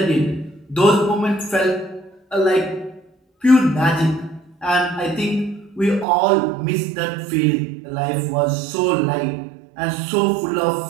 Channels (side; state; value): left; drops out; at 6.1 s